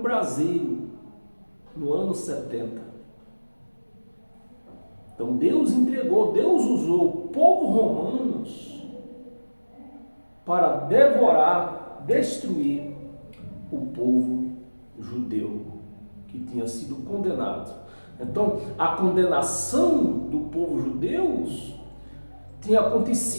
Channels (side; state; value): both; inverted; correlation -1.00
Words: no ano 70. Então Deus entregou, Deus usou o povo romanos para devorar, destruir o povo judeu que tinha sido condenado. Então, a condenação do povo judeu tinha